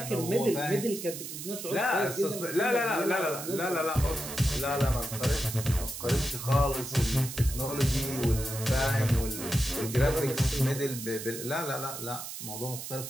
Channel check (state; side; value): noise; right; hiss, 8 dB below the sound